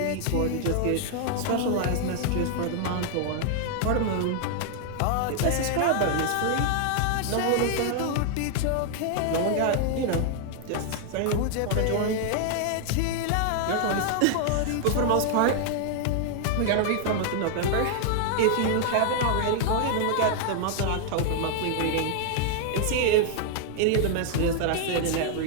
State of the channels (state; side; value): different; both; correlation 0.00